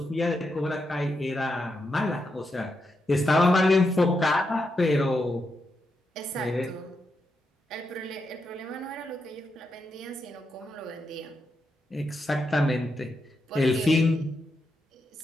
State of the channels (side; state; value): both; normal; correlation 0.84